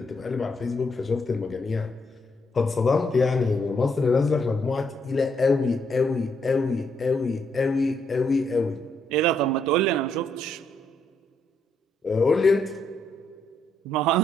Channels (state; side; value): normal; both; correlation 0.75